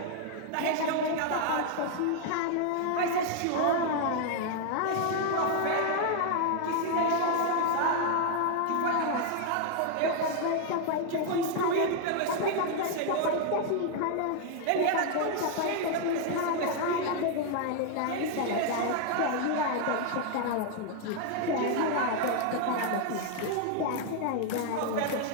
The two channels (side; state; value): both; different; correlation 0.00